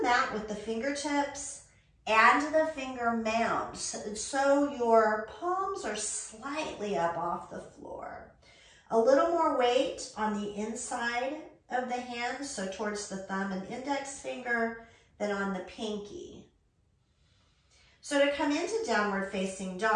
mat with the fingertips and the finger mound, so your palms are slightly up off the floor. A little more weight on the inside of the hand, so towards the thumb and index finger, than on the pinky. So to come into downward facing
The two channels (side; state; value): both; identical; correlation 1.00